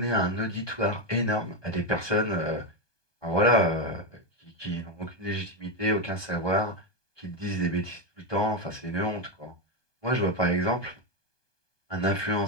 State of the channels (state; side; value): late; right; 1.2 ms